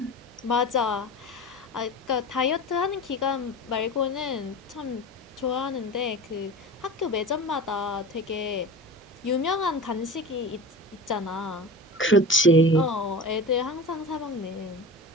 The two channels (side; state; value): both; normal; correlation 0.33